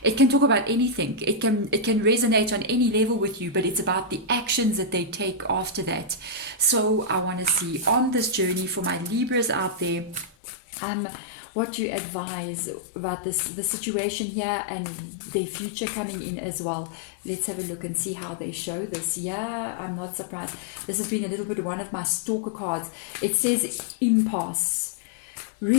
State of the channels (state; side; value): drops out; right; at 10.3 s